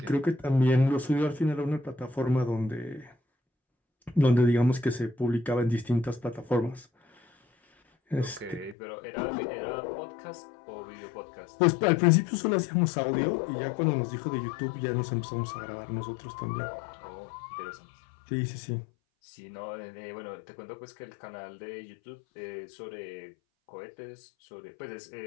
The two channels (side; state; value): right; drops out; at 8.8 s